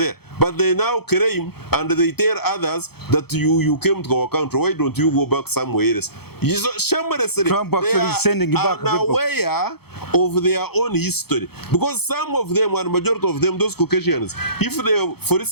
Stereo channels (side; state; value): right; late; 0.96 ms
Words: But they now claim, and they tell others that you came to our country. Why don't you go back somewhere else? Shamelessly, Trump actually is sending back are aware of their own history. Because some of them, and majority of them, those Caucasians, if they, for